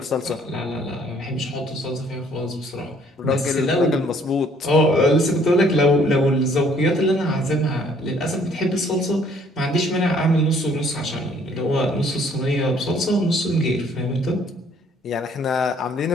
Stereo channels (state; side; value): normal; both; correlation 0.61